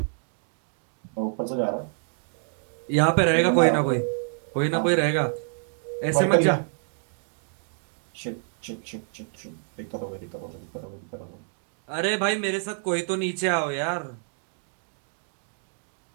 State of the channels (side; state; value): left; silent; 60 dB below the other